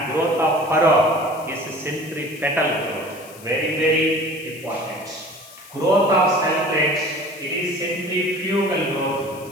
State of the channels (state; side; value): noise; left; hiss, 20 dB below the sound